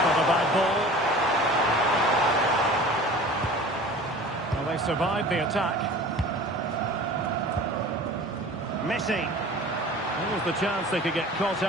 not a bad ball. Well, they survived the attack. Messi. There was the chance they could get caught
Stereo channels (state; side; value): normal; both; correlation 0.42